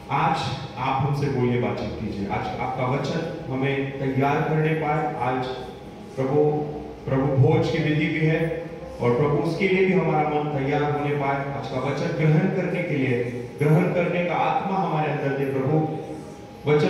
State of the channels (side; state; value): both; identical; correlation 1.00